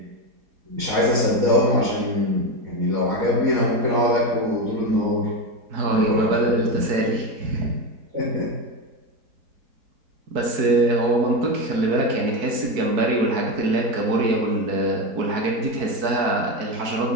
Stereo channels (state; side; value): late; left; 4.6 ms